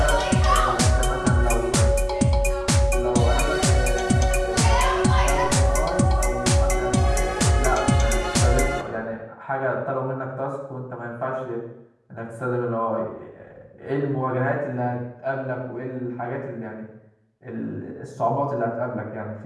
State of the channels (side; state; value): both; identical; correlation 1.00